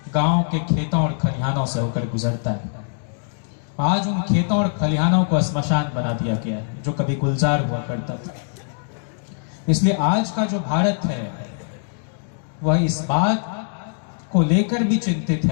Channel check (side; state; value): right; silent; digital silence